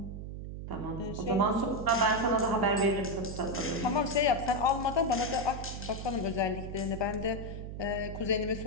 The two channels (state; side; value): noise; right; hum, 8 dB below the sound